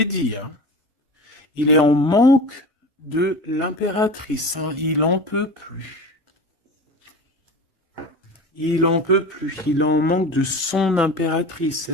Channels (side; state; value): both; normal; correlation 0.33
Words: dit, hein. Il est en manque de l'impératrice, hein. Il en peut plus. Il en peut plus. Il en manque de son impératrice.